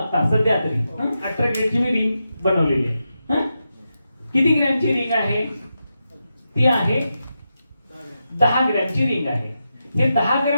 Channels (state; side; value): inverted; both; correlation -0.87